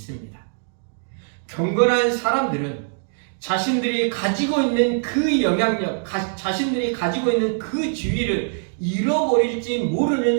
경건한 사람들은 자신들이 가지고 있는 그 영향력, 자신들이 가지고 있는 그 지위를 잃어버릴지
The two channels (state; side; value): silent; left; digital silence